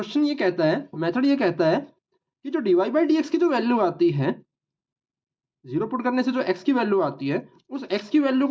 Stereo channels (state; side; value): identical; both; correlation 1.00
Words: ये कहता है, मेथड ये कहता है कि जो dy बाई डी एक्स की जो वैल्यू आती है 0 पुट करने से जो x की वैल्यू आती है, उस x की वैल्यू